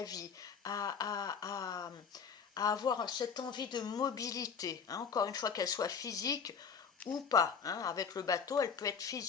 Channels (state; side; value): quieter; right; 6.4 dB